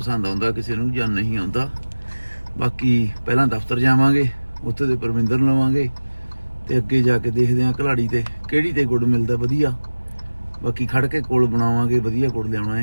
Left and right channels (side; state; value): both; inverted; correlation -1.00